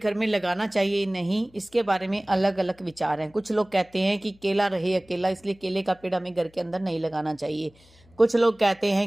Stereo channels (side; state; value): left; noise; hum, 29 dB below the sound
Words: में लगाना चाहिए नहीं, इसके बारे में अलग अलग विचार हैं। कुछ लोग कहते हैं कि केला रहे अकेला, इसलिए केले का पेड़ हमें घर के अंदर नहीं लगाना चाहिए। कुछ लोग कहते